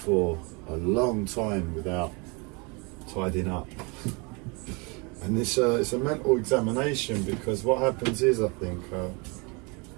a long time without tidying up. And it's a mental examination, because what happens is, I think,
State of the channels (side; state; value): left; quieter; 30.2 dB